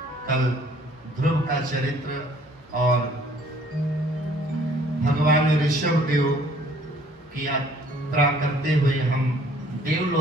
कल ध्रुव का चरित्र और भगवान ऋषभ देव की यात्रा करते हुए हम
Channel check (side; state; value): both; normal; correlation 0.58